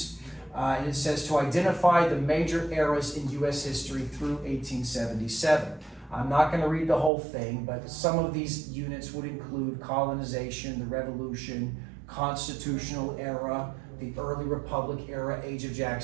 And it says to identify the major eras in U.S. history through 1877. I'm not going to read the whole thing, but some of these units would include colonization, the Revolution, Constitutional era, the early Republic era, Age of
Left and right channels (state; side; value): drops out; left; at 7.1 s